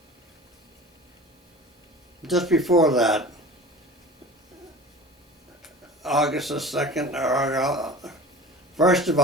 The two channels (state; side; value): normal; both; correlation 0.38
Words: Just before that, August the 2nd, or 1st of